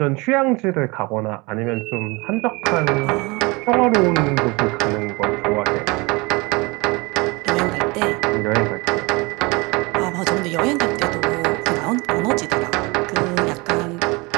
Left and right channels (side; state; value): left; quieter; 25.9 dB